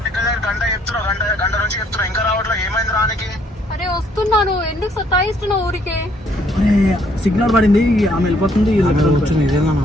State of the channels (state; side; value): normal; both; correlation 0.66